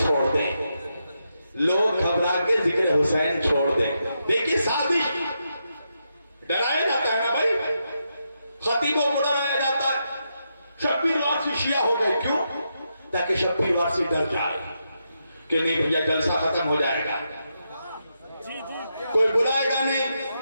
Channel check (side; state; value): both; inverted; correlation -0.84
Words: دیں، لوگ گھبرا کے ذکر حسین چھوڑ دیں۔ دیکھیے سازش، ڈرایا جاتا ہے نا بھائی، خطیبوں کو ڈرایا جاتا ہے، شبیر وارسی شیعہ ہو گئے۔ کیوں؟ تاکہ شبیر وارسی ڈر جائے کہ نہیں بھیا جلسہ ختم ہو جائے گا، کوئی بلائے گا